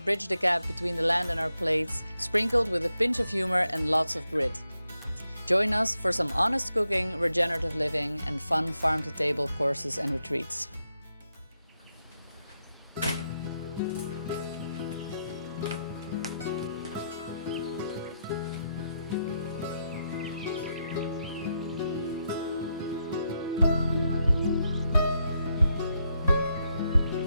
bridge the gap between the land and our plates, sprinkled with a pinch of humor and lots of grit. Join us for some honest cooking, regenerative living and fun farm-to-table courses and retreats.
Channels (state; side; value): inverted; both; correlation -0.82